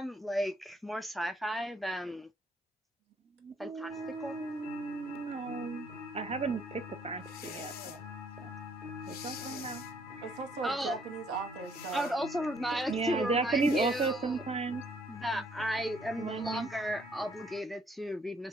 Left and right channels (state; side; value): normal; both; correlation 0.65